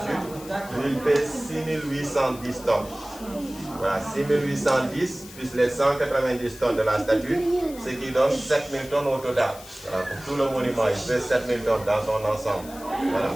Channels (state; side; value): noise; left; hiss, 18 dB below the sound